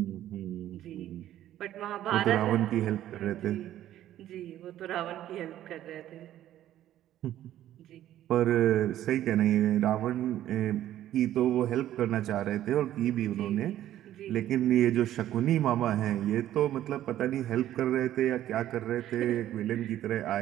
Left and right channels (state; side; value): quieter; left; 12.6 dB